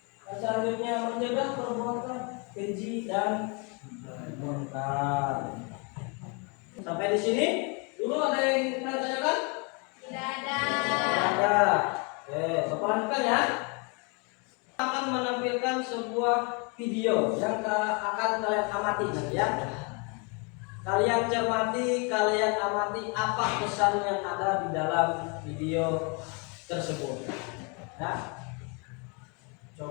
Dan selanjutnya mencegah perbuatan keji dan munkar. Sampai di sini dulu ada yang ingin tanyakan? Tidak ada. Tidak ada. Oke, Bapak lanjutkan ya. Akan menampilkan sebuah video yang akan kalian amati nanti ya. Kalian cermati, kalian amati apa pesan yang ada di dalam video tersebut. Ya.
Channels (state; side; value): quieter; right; 33.6 dB